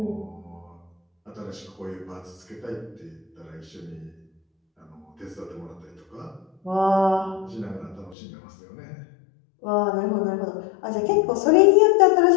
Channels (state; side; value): drops out; right; at 8.2 s